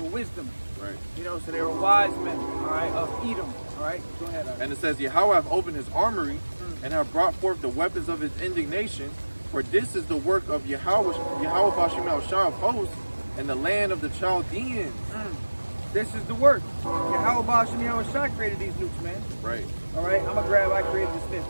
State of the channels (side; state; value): both; inverted; correlation -1.00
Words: wisdom. Right. You know, so they were wise men, all right, of Edom. All right, go ahead. And it says, Yahweh have opened his armory and have brought forth the weapons of his indignation, for this is the work of Yahweh Bashim Shah of hosts in the land of the Chaldeans. This is the work. Yahweh Bashim Shah created these nukes, man. Right. All right, I'm going to grab, I created this myth,